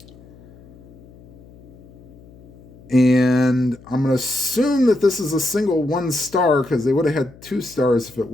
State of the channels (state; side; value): noise; left; hum, 23 dB below the sound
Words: And I'm going to assume that this is a single 1 star because they would have had 2 stars if it